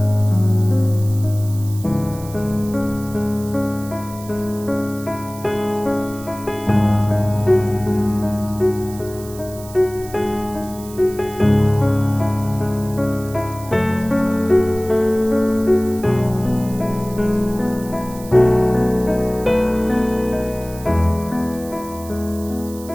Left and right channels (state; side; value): noise; right; hiss, 18 dB below the sound